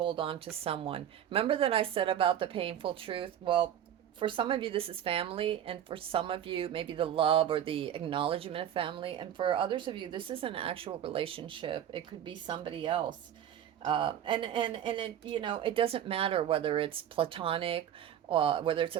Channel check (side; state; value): left; quieter; 10.2 dB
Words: on to someone. Remember that I said about the painful truth? Well, for some of you, this is family, and for some of you, maybe the love or the acknowledgement of family, and for others of you, this is an actual relationship. It could be somebody else. And it, it doesn't matter whether it's platonic, or whether it's